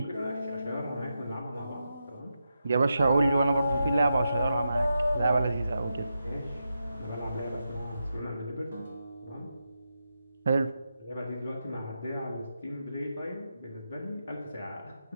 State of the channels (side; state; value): both; inverted; correlation -0.87